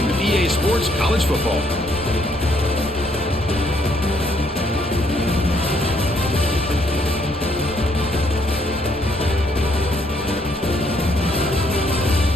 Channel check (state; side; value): normal; both; correlation 0.70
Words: of EA Sports College Football.